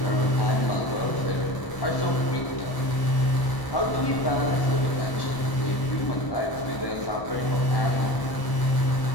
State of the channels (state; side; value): late; right; 1.0 ms